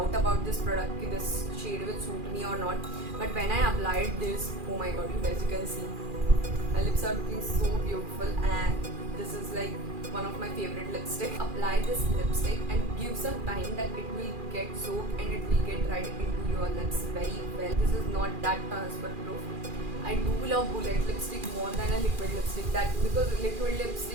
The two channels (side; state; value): left; late; 2.4 ms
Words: about this product, कि this shade will suit me or not, but when I applied this, oh my god, you guys, you can see my lips are looking so beautiful, and this is like one of my favorite lipstick. Apply this lipstick and give some time that it will get soaked and it will get right into your lips very well. This is not that transfer proof. I do love bullet lipstick more than a liquid lipstick, that because liquid